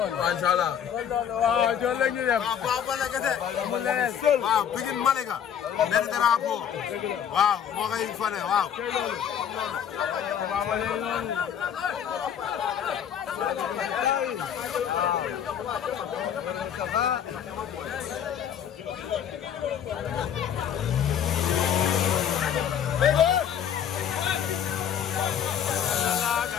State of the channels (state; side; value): quieter; right; 8.8 dB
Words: inshallah waaw jox la ñu dem Papa Baldé kete amul leneen waaw Pikine Malika benn drapeau waaw moo koy fane waaw Papa Baldé noonu